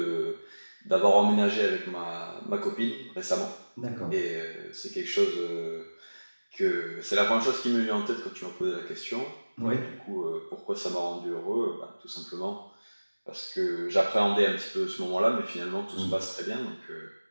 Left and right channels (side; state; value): both; inverted; correlation -1.00